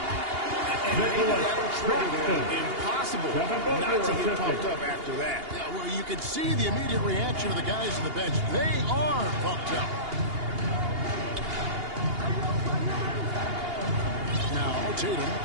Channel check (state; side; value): late; left; 2.8 ms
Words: And that'll trigger them. Impossible not to get pumped up after that. Yeah, well, you can see the immediate reaction of the guys on the bench. They are pumped up. Now, Tatum.